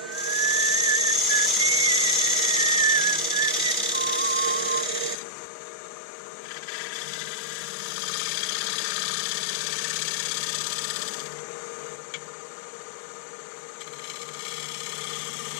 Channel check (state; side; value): drops out; right; at 5.2 s